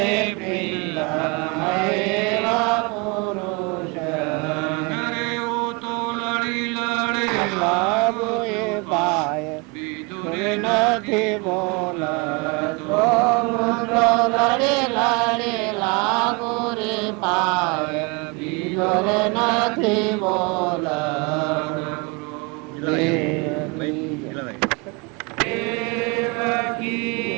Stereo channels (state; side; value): quieter; left; 29.2 dB